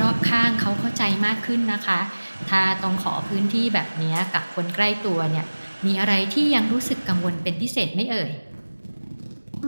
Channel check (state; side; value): inverted; both; correlation -1.00